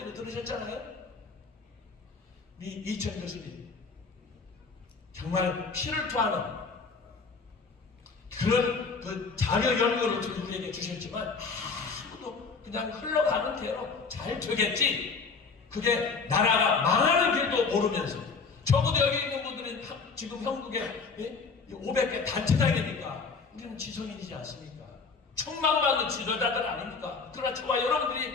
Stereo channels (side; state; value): right; quieter; 4.8 dB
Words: 들으셨잖아요. 이 이천 교수님 정말 피를 토하는 그런 그 자료 연구를 우리에게 주셨지만 아무도 그냥 흘러가는 대로 잘 되겠지. 그게 나라가 망하는 길도 모르면서 적어도 여기 있는 분들은 지금 형국에 500개 단체장이니까 우리는 지성인이지 않습니까? 충망받는 지도자들 아닙니까? 그러나 저와